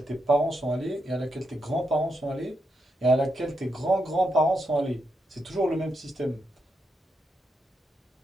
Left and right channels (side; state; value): both; normal; correlation 0.83